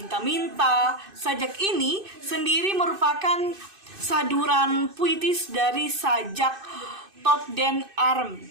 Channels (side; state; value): left; late; 2.6 ms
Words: Sajak ini sendiri merupakan saduran puitis dari sajak Tot den